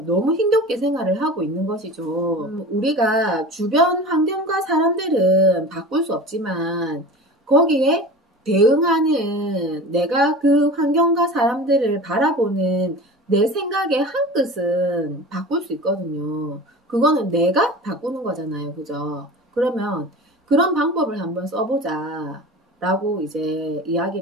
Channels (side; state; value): both; normal; correlation 0.35